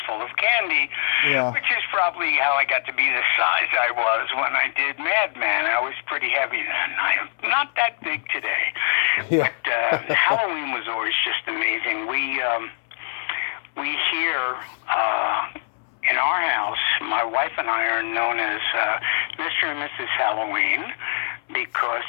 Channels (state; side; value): silent; right; 63 dB below the other